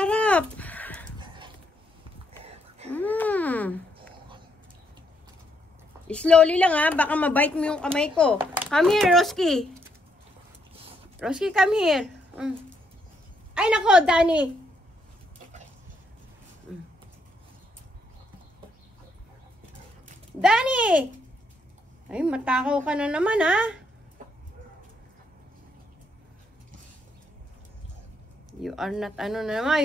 Slowly lang ha, baka mabite mo yung kamay ko. Come here, Roski. Roski, come here. Ay nako, Danny. Danny! Ay, matakaw ka na naman ha. You are not, ano na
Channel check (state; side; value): normal; both; correlation 0.75